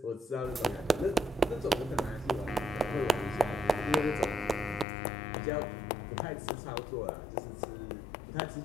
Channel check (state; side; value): drops out; right; at 4.9 s